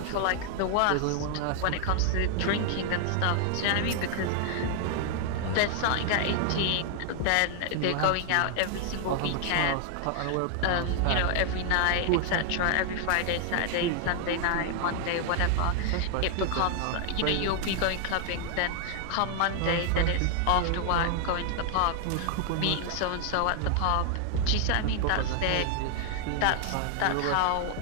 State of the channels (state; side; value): different; both; correlation 0.00